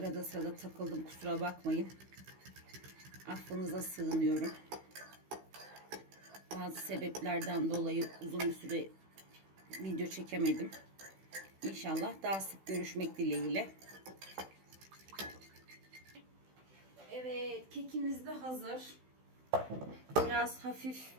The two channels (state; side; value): late; left; 16 ms